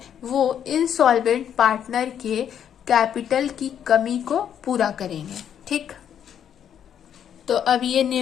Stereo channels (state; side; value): quieter; right; 9.1 dB